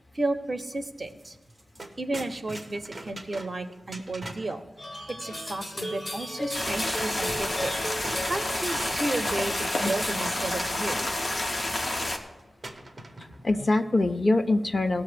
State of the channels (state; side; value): normal; both; correlation 0.94